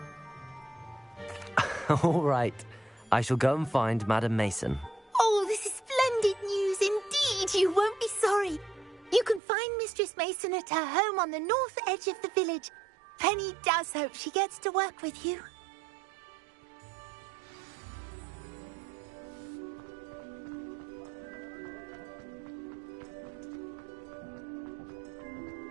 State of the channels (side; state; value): left; drops out; at 9.4 s